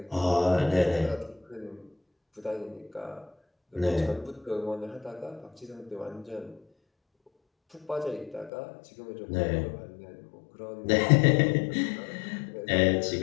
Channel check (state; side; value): drops out; right; at 8.5 s